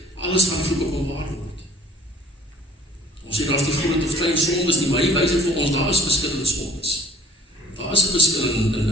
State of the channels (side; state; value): both; normal; correlation 0.55